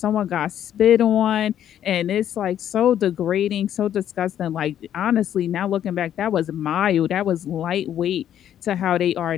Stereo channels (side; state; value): right; quieter; 10.5 dB